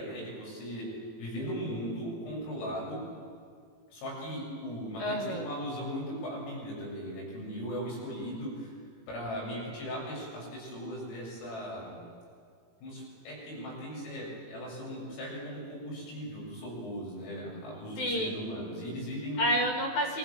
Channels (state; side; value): late; right; 18 ms